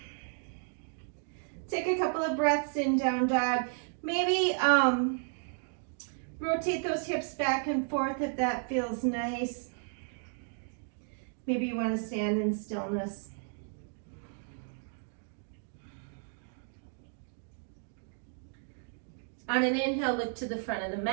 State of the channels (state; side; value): silent; left; 56 dB below the other